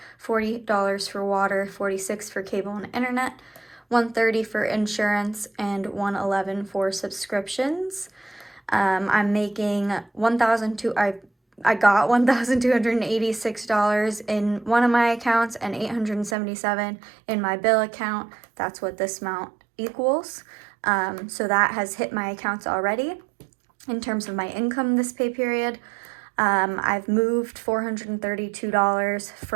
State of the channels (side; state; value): left; drops out; at 16.4 s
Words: $40 for water, $46 for cable and internet, $130 for insurance, and $111 for subscriptions. I'm making I got $1,286 in one of my accounts and $877 in my bill account. That's what this amount equals. So that has hit my accounts already. In terms of my income this pay period, I've moved $432